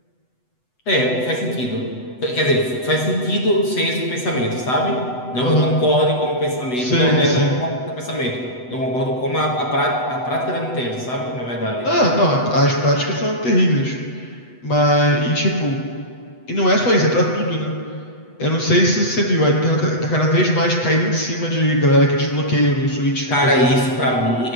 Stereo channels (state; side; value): late; right; 8.0 ms